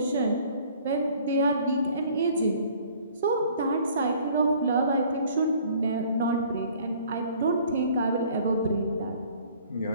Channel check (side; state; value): both; inverted; correlation -0.55